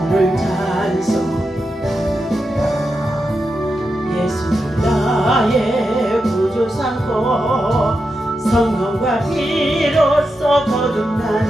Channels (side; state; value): both; normal; correlation 0.88